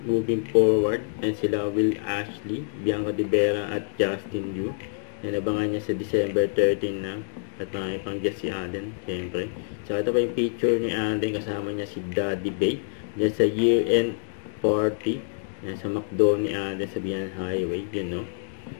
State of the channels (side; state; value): right; silent; digital silence